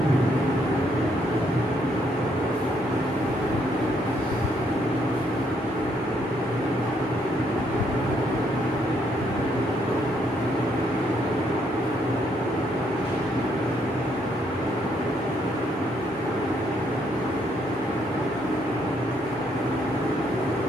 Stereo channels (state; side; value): normal; both; correlation 0.72